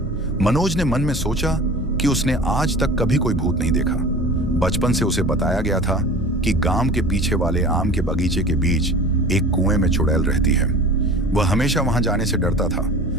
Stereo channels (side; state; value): both; normal; correlation 0.39